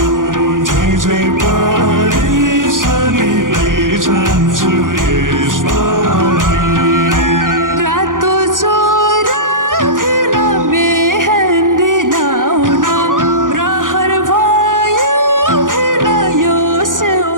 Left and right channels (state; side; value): late; left; 0.89 ms